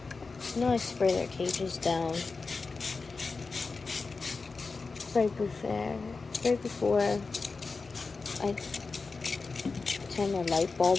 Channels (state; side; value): quieter; right; 4.2 dB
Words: I know I spray their cages down right before I turn the light